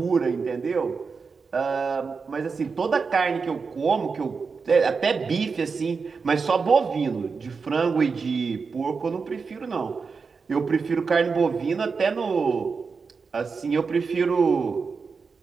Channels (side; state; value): left; quieter; 5.0 dB